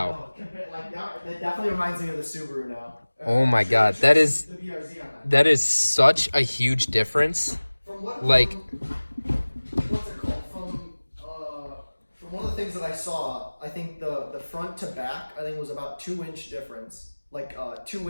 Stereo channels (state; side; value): inverted; both; correlation -1.00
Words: Like that definitely reminds me of the Subaru now. Oh my God. That is The BRZ on that. that is such a huge difference. From what? Like- What's it called? From one of the things that I saw, I think the front to back, I think was about 2-inch difference, like